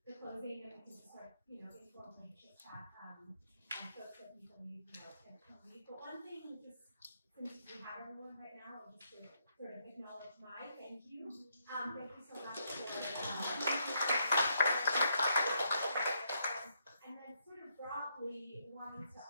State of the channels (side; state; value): both; inverted; correlation -0.76